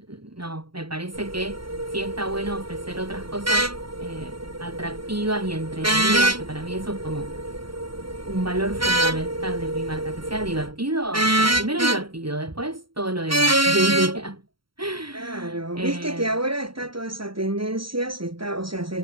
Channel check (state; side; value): late; left; 0.74 ms